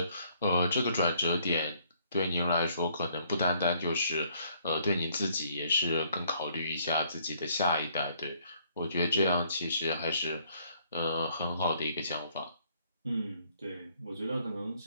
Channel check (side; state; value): both; inverted; correlation -0.65